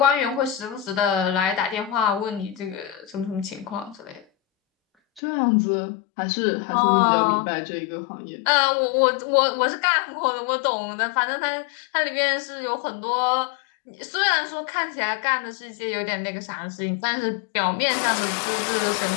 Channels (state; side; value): drops out; right; at 5.2 s